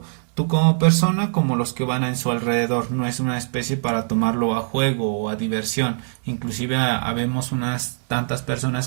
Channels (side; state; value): left; silent; 64 dB below the other